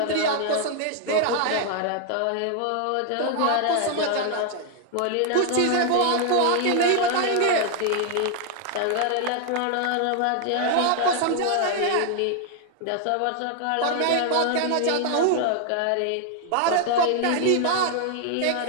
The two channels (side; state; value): both; different; correlation 0.00